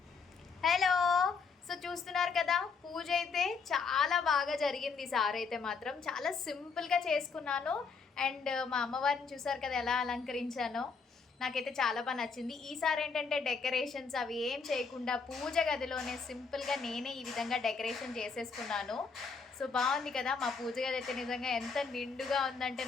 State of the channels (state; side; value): quieter; right; 5.1 dB